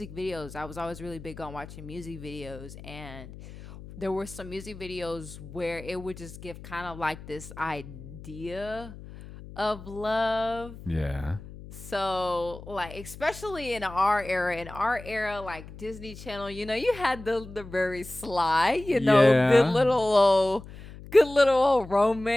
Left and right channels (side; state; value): left; noise; hum, 15 dB below the sound